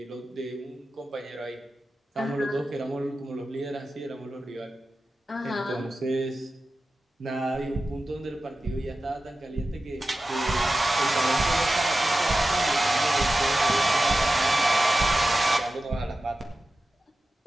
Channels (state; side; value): normal; both; correlation 0.94